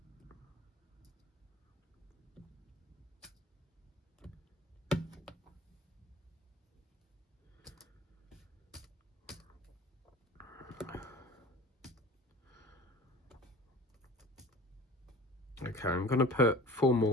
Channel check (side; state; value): both; normal; correlation 0.42